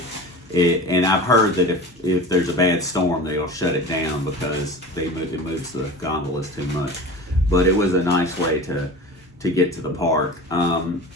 and I've heard that if there's a bad storm, they'll shut it down because it moves the gondolas too much. But it was a nice way to get to the park.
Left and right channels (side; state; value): both; normal; correlation 0.35